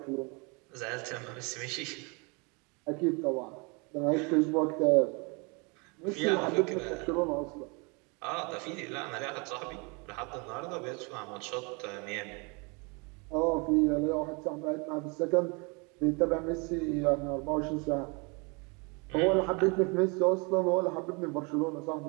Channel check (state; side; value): quieter; left; 31.1 dB